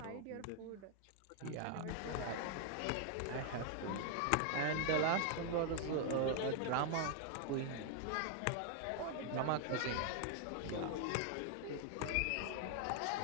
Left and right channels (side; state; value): both; different; correlation 0.00